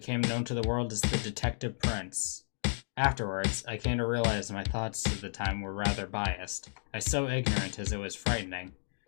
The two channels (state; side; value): silent; right; digital silence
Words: known to the world as the Detective Prince. Afterwards, I came to realize my thoughts at the time were rather biased. I was so ignorant as it was frightening.